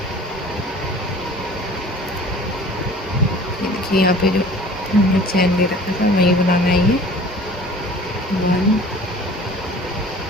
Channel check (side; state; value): both; normal; correlation 0.46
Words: ये देखिए यहाँ पे जो हमने चैन ले रखा था वही बनाना है ये। 1